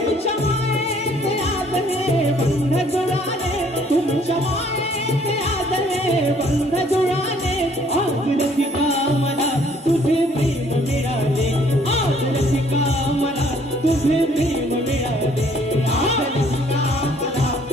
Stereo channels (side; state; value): both; normal; correlation 0.61